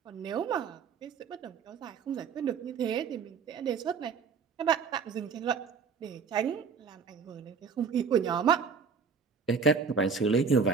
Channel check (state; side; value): quieter; left; 5.8 dB